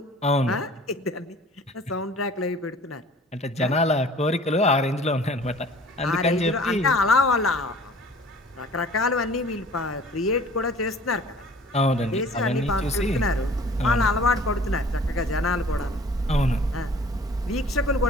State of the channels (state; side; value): normal; both; correlation 0.49